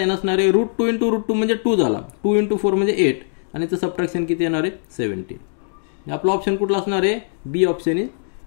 असणार आहे. √2 इंटू √2 म्हणजे 2 झाला, 2 इंटू 4 म्हणजे 8 आणि त्याचं सबट्रॅक्शन किती येणार आहे 17. आपला ऑप्शन कुठला असणार आहे बी ऑप्शन इज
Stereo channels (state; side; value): silent; right; digital silence